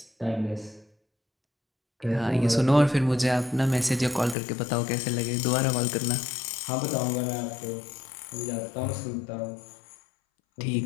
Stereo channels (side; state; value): right; drops out; at 4.4 s